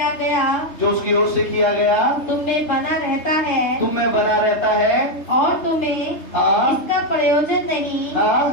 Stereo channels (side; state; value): right; late; 3.3 ms